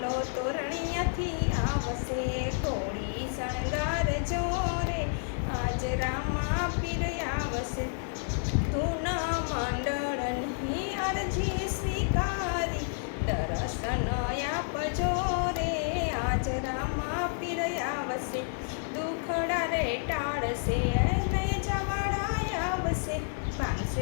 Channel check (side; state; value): right; silent; digital silence